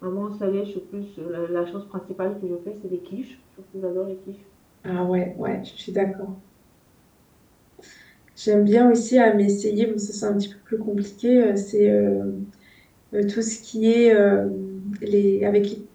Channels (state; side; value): identical; both; correlation 1.00